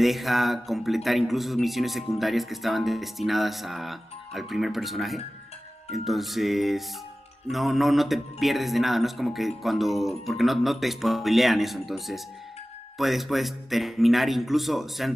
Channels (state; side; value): normal; both; correlation 0.96